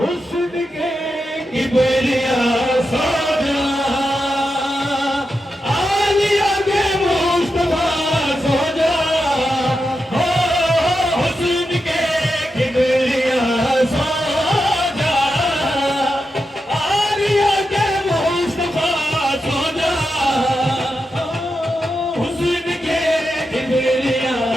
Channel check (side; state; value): both; normal; correlation 0.88